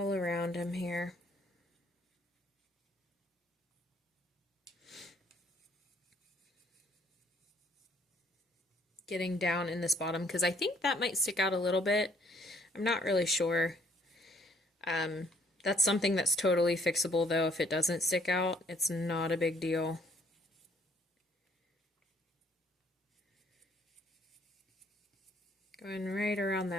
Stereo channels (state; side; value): normal; both; correlation 0.63